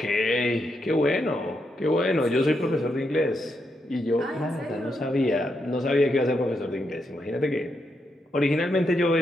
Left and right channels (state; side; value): normal; both; correlation 0.82